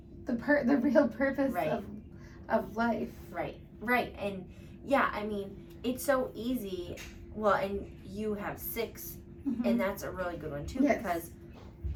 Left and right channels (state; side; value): identical; both; correlation 1.00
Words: the real purpose of life. Right. And yeah, I mean, it's so easy. Well, and you have 6, and that's a really good one too, because